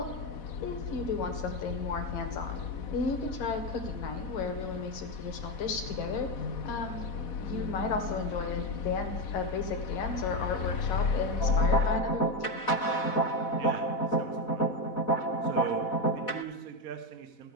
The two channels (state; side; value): late; right; 4.1 ms